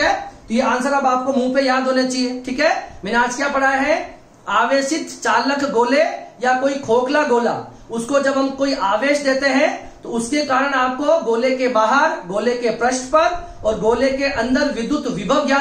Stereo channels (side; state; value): both; identical; correlation 1.00